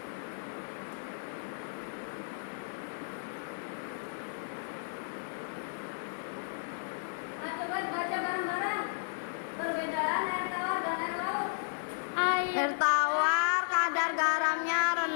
Nah, coba baca bareng-bareng perbedaan air tawar dan air laut. Air tawar kadar garamnya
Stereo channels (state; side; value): silent; right; digital silence